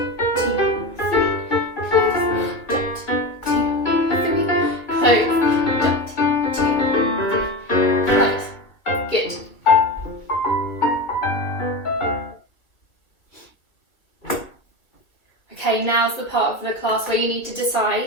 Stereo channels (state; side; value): late; right; 2.2 ms